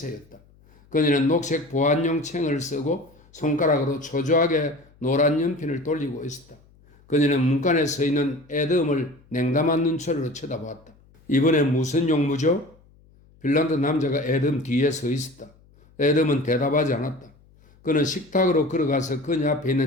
그녀는 녹색 보안용 챙을 쓰고 손가락으로 초조하게 노란 연필을 돌리고 있었다. 그녀는 문간에 서 있는 에돔을 냉담한 눈초리로 쳐다보았다. 이번엔 무슨 용무죠? 핀란드 남자가 에돔 뒤에 서 있었다. 에돔은 대답하지 않았다. 그는 식탁으로 걸어가서 그녀 앞에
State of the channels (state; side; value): noise; left; hum, 29 dB below the sound